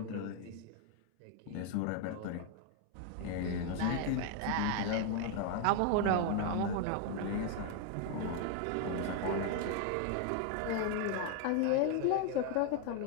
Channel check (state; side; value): different; both; correlation 0.01